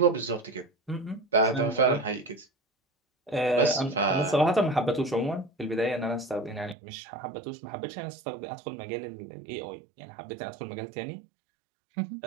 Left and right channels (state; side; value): drops out; left; at 6.8 s